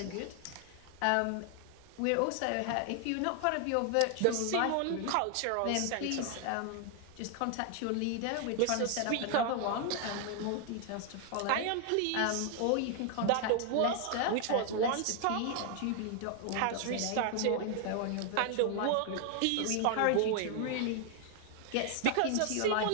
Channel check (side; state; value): both; different; correlation 0.00